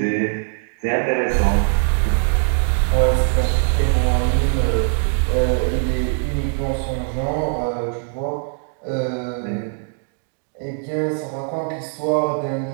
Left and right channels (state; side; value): silent; left; 64 dB below the other